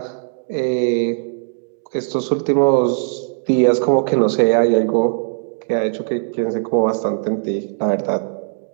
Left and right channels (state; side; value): silent; left; digital silence